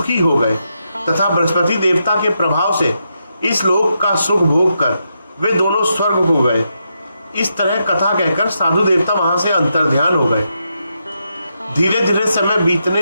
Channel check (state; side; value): inverted; both; correlation -0.83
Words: हो गए तथा बृहस्पति देवता के प्रभाव से इस लोक का सुख भोग कर वे दोनों स्वर्ग हो गए। इस तरह कथा कहकर साधु देवता वहां से अंतर्ध्यान हो गए। धीरे धीरे समय